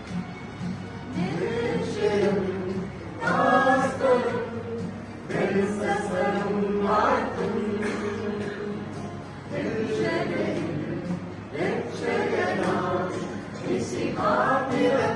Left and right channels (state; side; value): identical; both; correlation 1.00